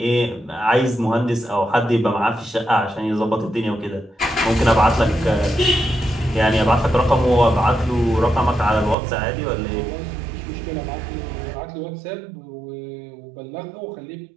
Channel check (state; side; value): drops out; left; at 9.0 s